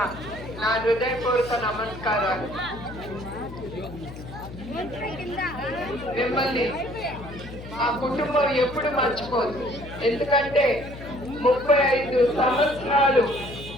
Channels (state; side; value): noise; left; hum, 13 dB below the sound